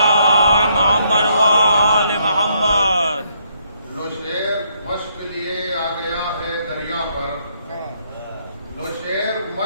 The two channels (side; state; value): both; inverted; correlation -0.72